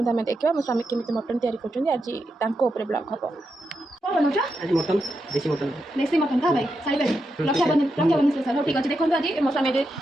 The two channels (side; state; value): both; normal; correlation 0.85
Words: आम देखा मो स्वामी केमी मटन तैयारी कर आज ब्लॉग हम मटन देसी मटन था भाई साई भाई रक्षाबंधन स्पेशल हो ठीक अच्छे देखो आज मो स्वामी